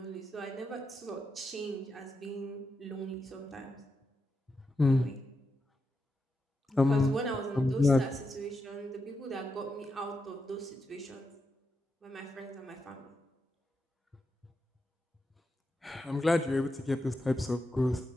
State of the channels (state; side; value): normal; both; correlation 0.86